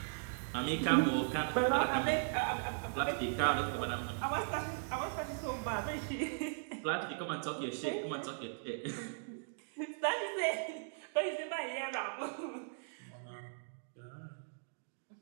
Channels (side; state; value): left; silent; digital silence